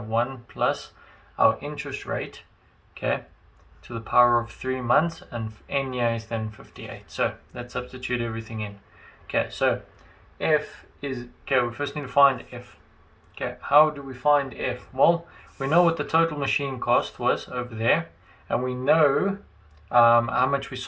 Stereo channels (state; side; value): identical; both; correlation 1.00